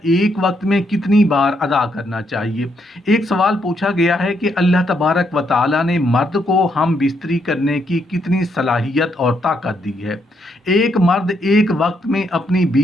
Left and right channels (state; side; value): normal; both; correlation 0.76